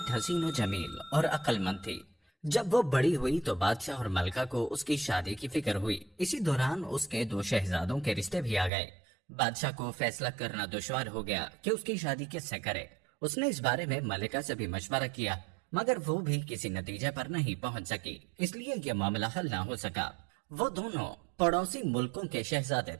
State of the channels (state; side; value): drops out; left; at 8.7 s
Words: हसीन व जमील और अक्लमंद थी। जब वो बड़ी हुई तो बादशाह और मलका को उसकी शादी की फिक्र हुई। इसी दौरान उसके दो शहजादों के रिश्ते भी आ गए। बादशाह को फैसला करना दुश्वार हो गया कि उसकी शादी किससे करे। उसने इस बारे में मलिका से भी मशवरा किया, मगर वो भी किसी नतीजे पर नहीं पहुंच सकी, इसलिए यह मामला हल ना हो सका। वो दोनों पड़ोसी मुल्कों के शहजादे